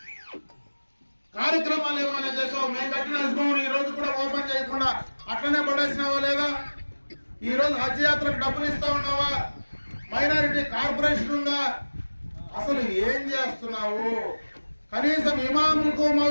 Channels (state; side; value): inverted; both; correlation -1.00